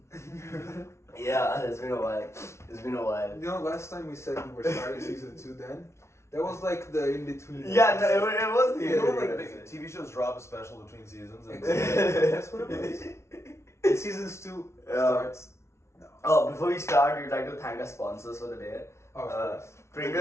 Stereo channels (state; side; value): late; right; 0.13 ms